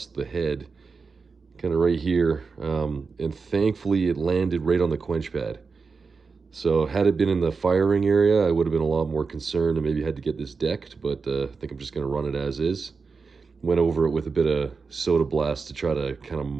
the head, kind of right here, and thankfully it landed right on the quench pad. So had it been in the firing area, I would have been a lot more concerned and maybe had to get this decked, but I think I'm just going to run it as is. Went over it with a bit of soda blast to try to kind of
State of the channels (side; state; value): left; quieter; 4.8 dB